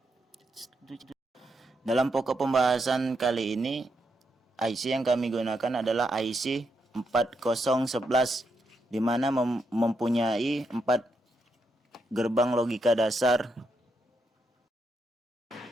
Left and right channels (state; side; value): normal; both; correlation 0.81